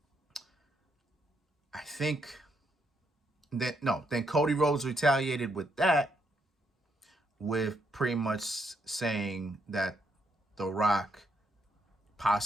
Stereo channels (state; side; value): normal; both; correlation 0.76